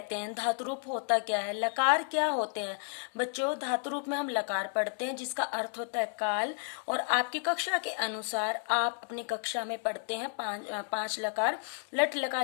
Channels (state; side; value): silent; right; 56 dB below the other